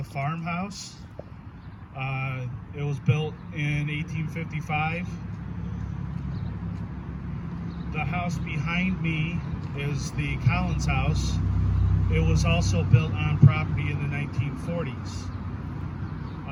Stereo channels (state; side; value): identical; both; correlation 1.00